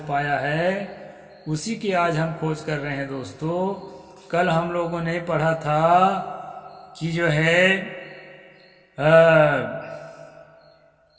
पाया है उसी की आज हम खोज कर रहे हैं दोस्तों। कल हम लोगों ने पढ़ा था कि जो है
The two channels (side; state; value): both; identical; correlation 1.00